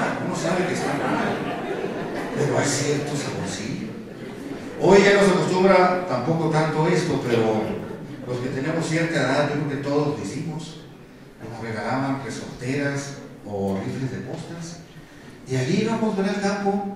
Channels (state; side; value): identical; both; correlation 1.00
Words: pero hay cierto saborcillo. Hoy ya no se acostumbra tampoco tanto esto, pero los que tenemos cierta edad, yo creo que todos lo hicimos. Nos regalaban resorteras o rifles de postas, y allí íbamos al